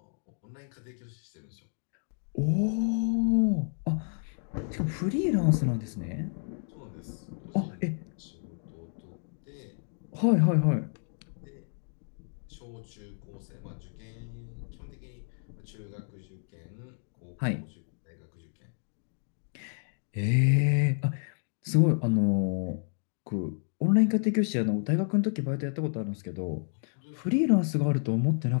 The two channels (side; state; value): right; silent; digital silence